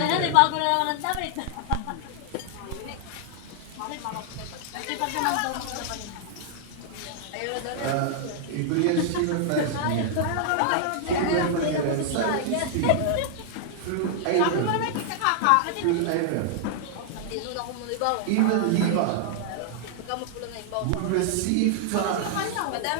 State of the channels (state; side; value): different; both; correlation -0.01